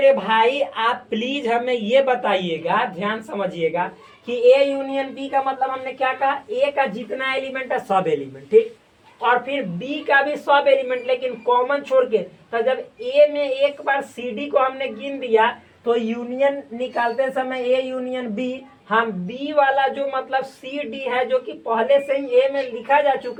भाई आप प्लीज हमें ये बताइएगा, ध्यान समझिएगा कि ए यूनियन बी का मतलब हमने क्या कहा, ए का जितना एलिमेंट है सब एलिमेंट, ठीक, और फिर बी का भी सब एलिमेंट लेकिन कॉमन छोड़ के। तो जब ए में एक बार सी डी को हमने गिन दिया तो यूनियन निकालते समय ए यूनियन बी, हम बी वाला जो मतलब सी डी है जो कि पहले से ही ए में लिखा जा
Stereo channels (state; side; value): identical; both; correlation 1.00